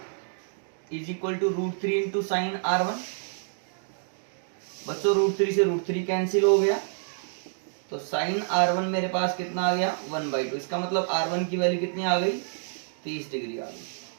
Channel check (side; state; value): left; silent; digital silence